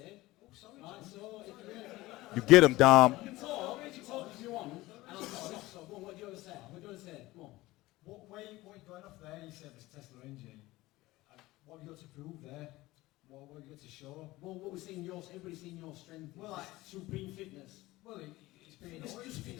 Right, so You get him, Dom. You can talk if you want, and I'll just stop. So go on, what do you want to say? What do you want to say? Come on. What you're going off there, you said this Tesla engine. What have you got to prove there? What have you got to show? Well, what we're seeing, everybody's seeing your strength. Well, like supreme fitness. Well, it's been It's just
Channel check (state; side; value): quieter; right; 18.7 dB